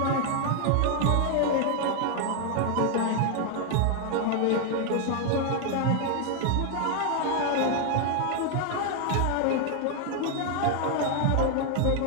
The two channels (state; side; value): different; both; correlation 0.00